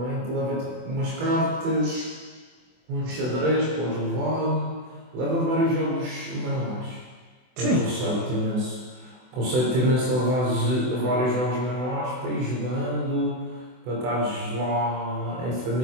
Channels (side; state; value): left; late; 24 ms